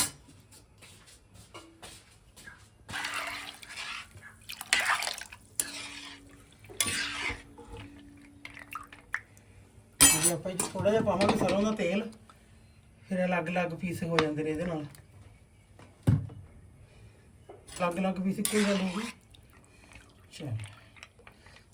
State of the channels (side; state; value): both; identical; correlation 1.00